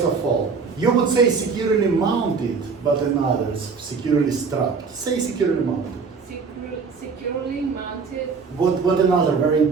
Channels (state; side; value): quieter; left; 5.1 dB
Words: of all, you would say securely mounted, but in others, securely strapped. Say securely mounted. securely mounted. What another very